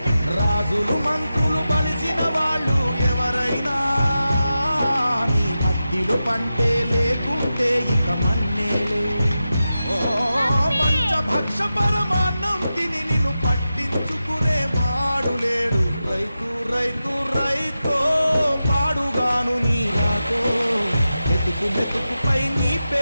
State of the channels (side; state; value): both; inverted; correlation -0.92